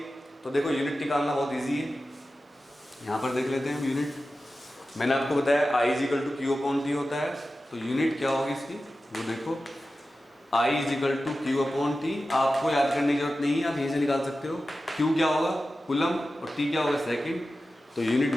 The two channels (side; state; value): both; normal; correlation 0.94